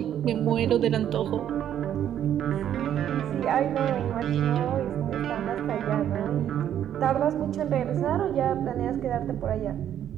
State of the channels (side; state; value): left; quieter; 10.4 dB